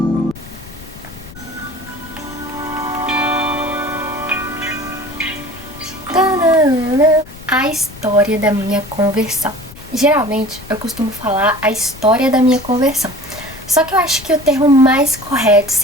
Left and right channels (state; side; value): noise; left; rumble, 17 dB below the sound